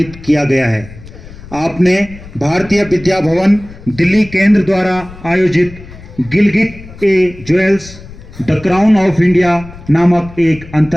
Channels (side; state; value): left; noise; rumble, 17 dB below the sound